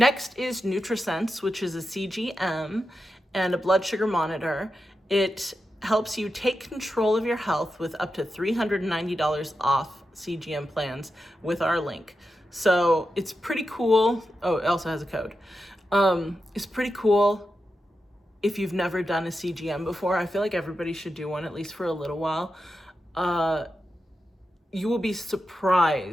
is NutriSense, which is a CGM and a blood sugar monitor. It helps you take control of your health with up to $390 off CGM plans with our link. So it's pretty cool. Oh, it also has a code. It's pretty cool if you've never done a CGM before. I feel like everybody should do one, at least for a little while. You will be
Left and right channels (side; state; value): both; normal; correlation 0.89